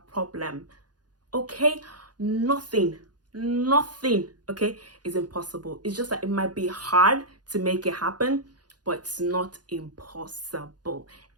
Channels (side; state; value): left; late; 0.69 ms